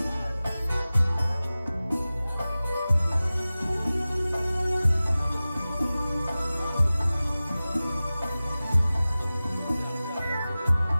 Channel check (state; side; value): inverted; both; correlation -0.97